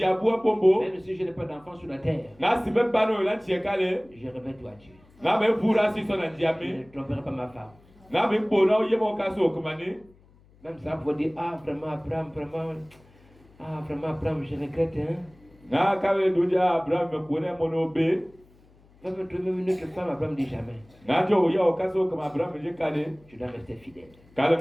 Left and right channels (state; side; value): noise; left; hum, 28 dB below the sound